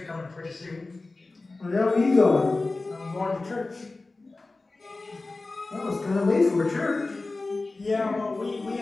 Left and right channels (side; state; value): right; quieter; 3.3 dB